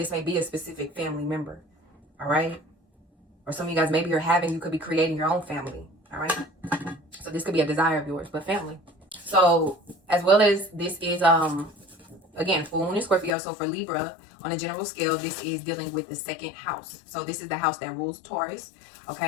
may be a specific family member. All right, or some of you guys, maybe you could be creating your own family. All right, so this could be a desire of yours, but family. So as well as this is again, full moon in Scorpio. So for Libra, on a general scale, this is dealing with the second house. So this is the house that rules Taurus.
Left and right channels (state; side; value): drops out; right; at 13.4 s